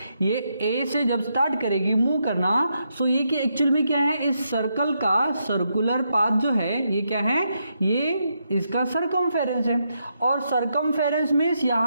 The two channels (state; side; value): inverted; both; correlation -0.81